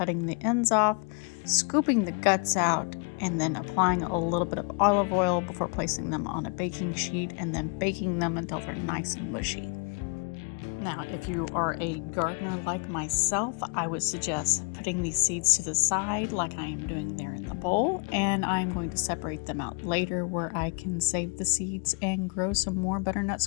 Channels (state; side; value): quieter; right; 36.7 dB